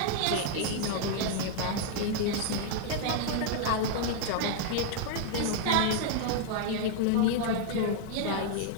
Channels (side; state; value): both; different; correlation 0.00